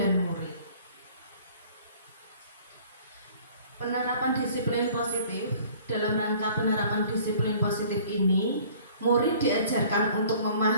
murid. Penerapan disiplin positif. Dalam rangka penerapan disiplin positif ini, murid diajarkan untuk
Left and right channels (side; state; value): both; inverted; correlation -0.52